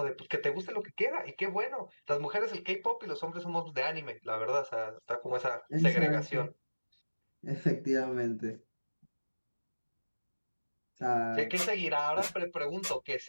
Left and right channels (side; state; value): both; inverted; correlation -1.00